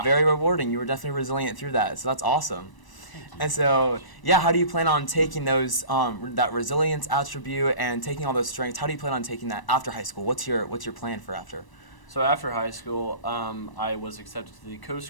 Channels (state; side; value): late; right; 1.0 ms